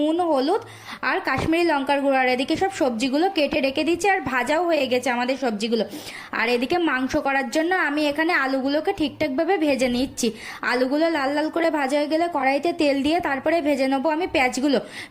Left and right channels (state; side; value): identical; both; correlation 1.00